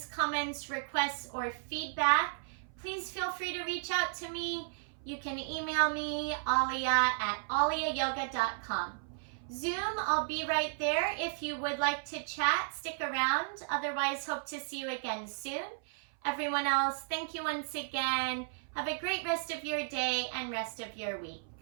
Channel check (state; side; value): silent; left; 55 dB below the other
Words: comments, requests, or feedback, please feel free to reach out to me. You can email me, ahlia@ahliayoga.com. Zoom, I'll be right there. If you would like to chat, stick around. Otherwise, hope to see you again soon. Everyone else, thank you once again. Have a great rest of your day and rest of your week.